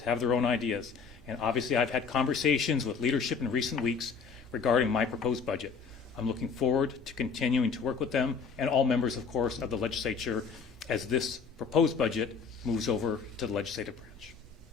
have their own ideas, and obviously I've had conversations with leadership in recent weeks regarding my proposed budget. I'm looking forward to continuing to work with them and all members, of course, of the legislature as this proposed budget moves over to the legislative branch.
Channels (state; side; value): quieter; right; 5.5 dB